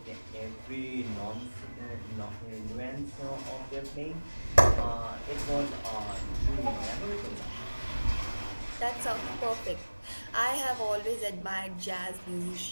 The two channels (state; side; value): inverted; both; correlation -1.00